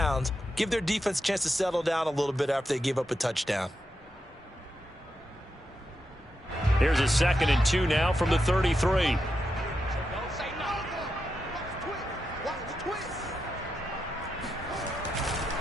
Give their defense a chance to settle down a little bit after they give up a touchdown. Here's a 2nd and 2 now from the 33.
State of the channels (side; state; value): both; normal; correlation 0.86